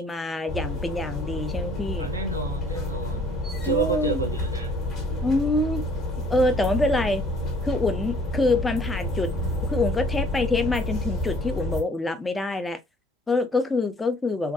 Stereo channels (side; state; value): both; normal; correlation 0.58